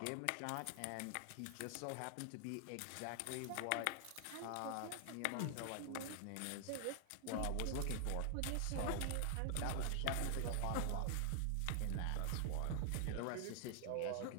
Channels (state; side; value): different; both; correlation 0.00